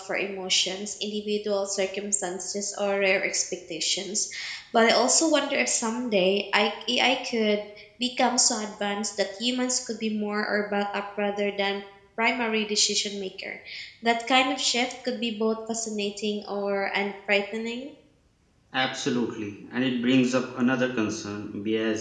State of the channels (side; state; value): both; identical; correlation 1.00